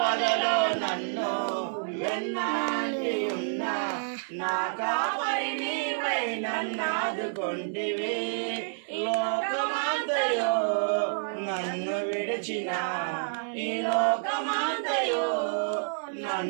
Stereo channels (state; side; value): silent; left; digital silence